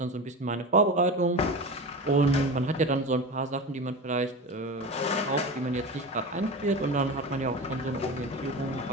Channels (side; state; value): both; normal; correlation 0.27